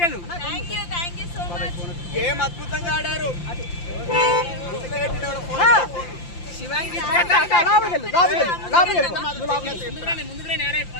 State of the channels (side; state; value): right; late; 5.8 ms